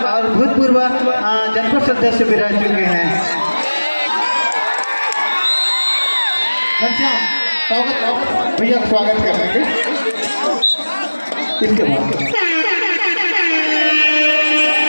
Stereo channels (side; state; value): both; inverted; correlation -1.00